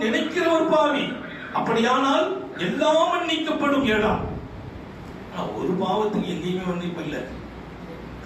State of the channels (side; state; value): both; identical; correlation 1.00